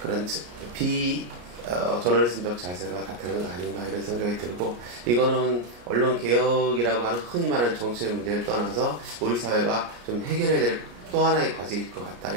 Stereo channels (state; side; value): late; left; 34 ms